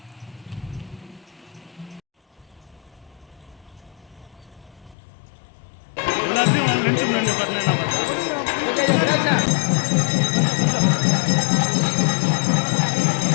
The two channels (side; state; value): right; drops out; at 5.0 s